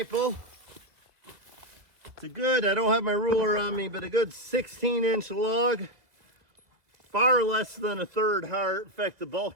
It's a good, I don't have my ruler on me, but a good 16-inch log. Far less than a third heart. In fact, the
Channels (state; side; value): late; left; 2.0 ms